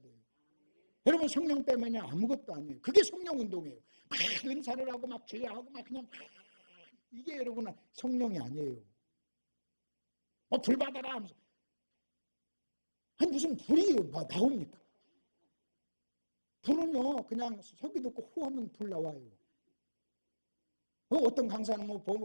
돼요. 여러분 성령 빼면요 아무것도 아니에요. 그게 성령 운동이에요. 막 은사를 하고 막 제하고 막 그냥 이게 여러분은 성령이 아니에요. 불 받아라 하면서 아니 무슨 불이 나옵니까? 불은요 그냥 소리 듣고 호하면 불 나와요. 어떤 강사는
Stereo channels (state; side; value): inverted; both; correlation -1.00